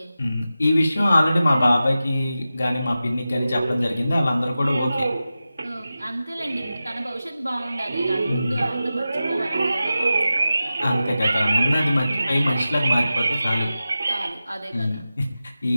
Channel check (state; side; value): inverted; both; correlation -0.93